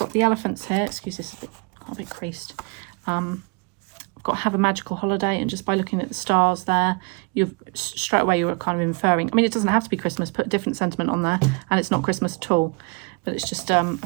the elephants here. Excuse this, a bit creased. I've got Have a Magical Holiday, and just by looking at the stars there, you're straight away you're kind of inferring. I mean, it doesn't have to be Christmas. Put a different sentiment on there, and it's not Christmas at all. But it's just a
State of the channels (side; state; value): left; quieter; 33.1 dB